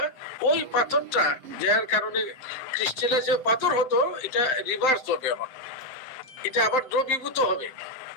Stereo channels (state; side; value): late; right; 7.6 ms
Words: ওই পাথরটা, যার কারণে ক্রিস্টালাইজ পাথর হতো, এটা রিভার্স হবে। এখন এটা আবার দ্রবীভূত হবে।